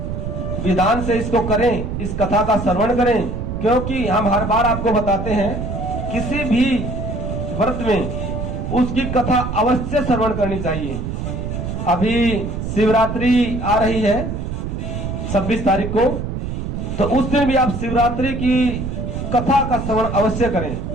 विधान से इसको करें, इस कथा का श्रवण करें, क्योंकि हम हर बार आपको बताते हैं किसी भी व्रत में उसकी कथा अवश्य श्रवण करनी चाहिए। अभी शिवरात्रि आ रही है 26 तारीख को, तो उस दिन भी आप शिवरात्रि की कथा का श्रवण अवश्य करें।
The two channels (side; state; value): right; noise; rumble, 4 dB below the sound